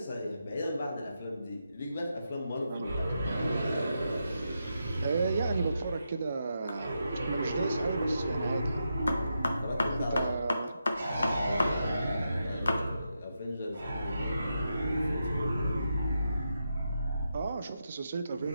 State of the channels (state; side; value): inverted; both; correlation -0.86